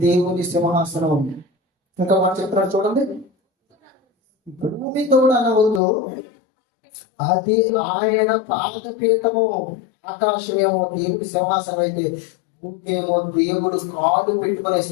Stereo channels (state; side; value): drops out; right; at 5.8 s